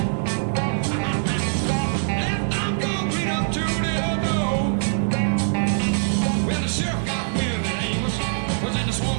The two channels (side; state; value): left; silent; digital silence